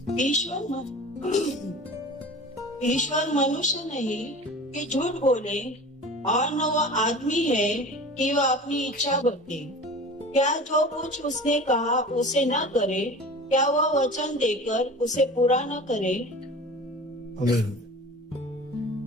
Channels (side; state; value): both; normal; correlation 0.38